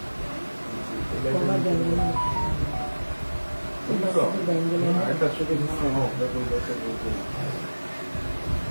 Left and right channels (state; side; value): inverted; both; correlation -1.00